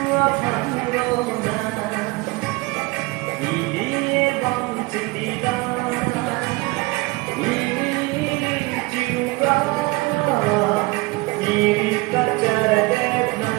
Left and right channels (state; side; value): quieter; left; 23.8 dB